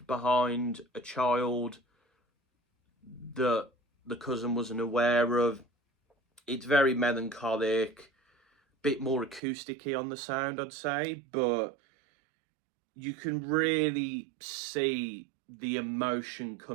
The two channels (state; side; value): drops out; left; at 9.4 s